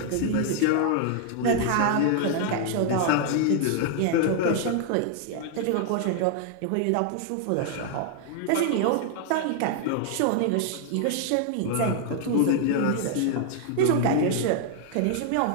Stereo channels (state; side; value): different; both; correlation 0.00